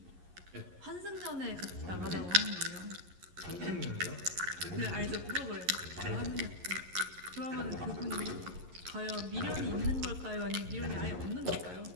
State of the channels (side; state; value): left; late; 11 ms